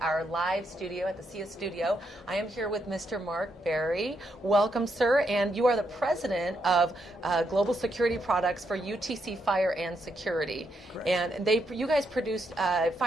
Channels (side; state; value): both; normal; correlation 0.79